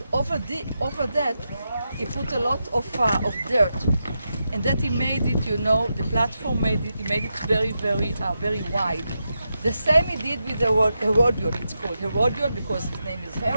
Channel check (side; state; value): both; inverted; correlation -0.87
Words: over that he put a lot of dirt. And that he made it, the platform he made it very, very wide. The same he did with the Herodion. It's called Herodion because his name is